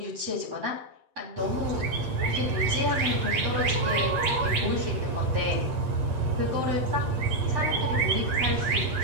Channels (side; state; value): left; late; 8.6 ms